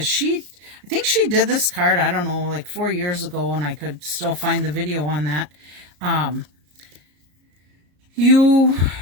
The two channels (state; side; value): late; left; 34 ms